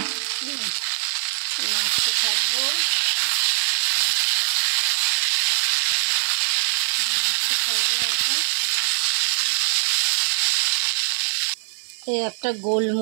নাড়তে থাকবো। এখন এই একটা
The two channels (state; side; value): silent; left; digital silence